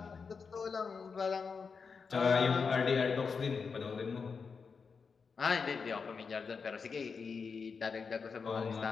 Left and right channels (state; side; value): quieter; right; 5.4 dB